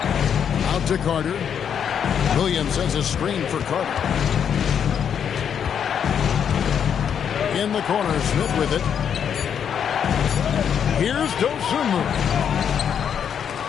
Out to Carter. Williams sends a screen for Carter. In the corner, Smith with it. Here's Dosunmu.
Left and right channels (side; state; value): right; quieter; 8.1 dB